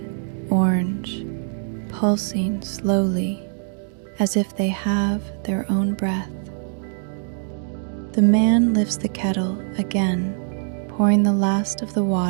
orange, pulsing slowly as if they have their own breath. The man lifts the kettle again, pouring the last of the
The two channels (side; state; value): left; silent; digital silence